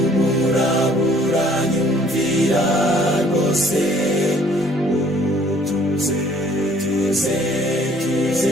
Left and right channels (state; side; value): normal; both; correlation 0.58